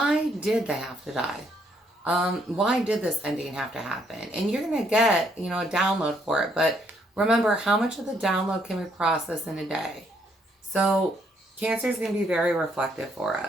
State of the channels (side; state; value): both; normal; correlation 0.71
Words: did they have to die? Why did this ending have to happen? And you're going to get, a download for it. But remember, how much of the download can we process in a day? So Cancer is going to be very reflective for